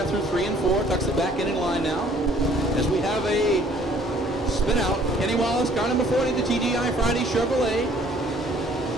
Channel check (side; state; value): both; normal; correlation 0.58